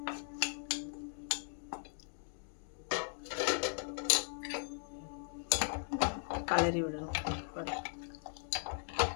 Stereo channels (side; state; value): right; silent; digital silence